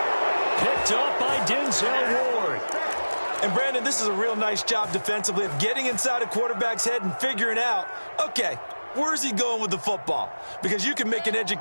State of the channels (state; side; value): inverted; both; correlation -1.00